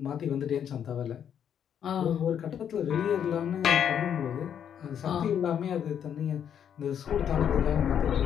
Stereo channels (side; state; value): right; quieter; 8.8 dB